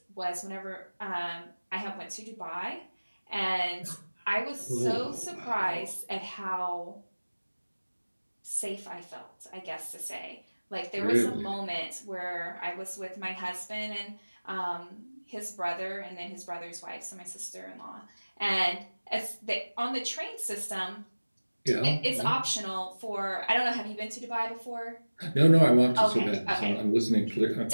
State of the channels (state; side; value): inverted; both; correlation -1.00